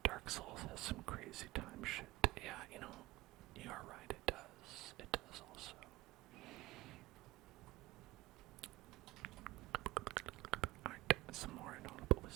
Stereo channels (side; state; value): left; quieter; 19.1 dB